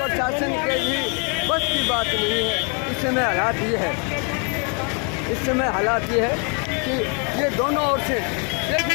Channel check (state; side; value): quieter; right; 36.5 dB